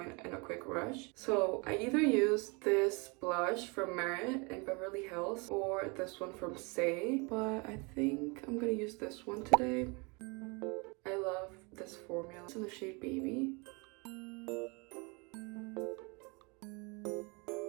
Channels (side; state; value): left; quieter; 30.0 dB